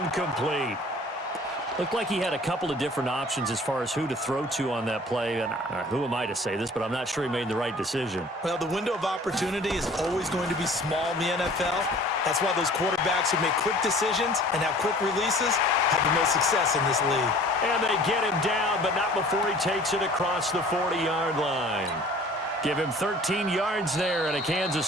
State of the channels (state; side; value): normal; both; correlation 0.49